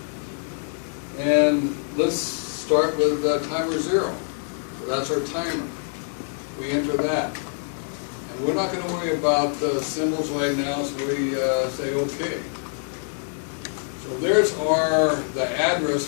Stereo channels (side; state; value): right; silent; 62 dB below the other